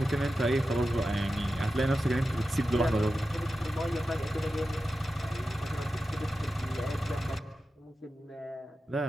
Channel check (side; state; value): both; normal; correlation 0.92